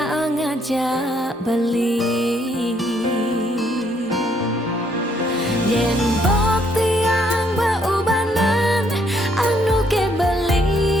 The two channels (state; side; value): normal; both; correlation 0.70